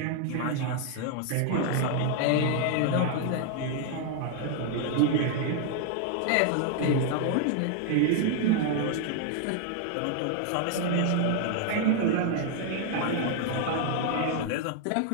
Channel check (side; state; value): both; different; correlation 0.00